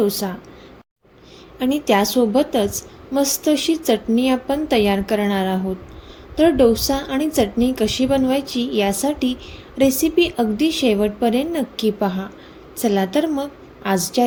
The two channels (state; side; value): identical; both; correlation 1.00